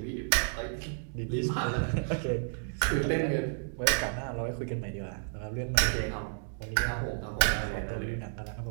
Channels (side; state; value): left; silent; digital silence